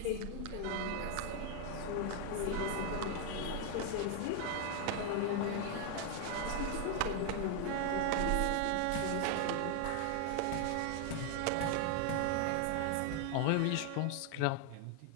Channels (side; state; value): both; different; correlation 0.00